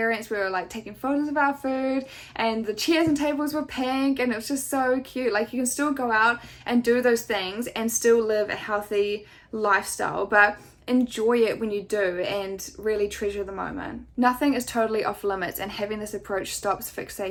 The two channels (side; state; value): both; identical; correlation 1.00